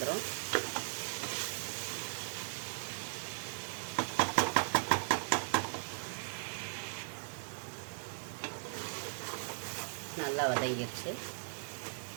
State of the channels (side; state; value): left; silent; digital silence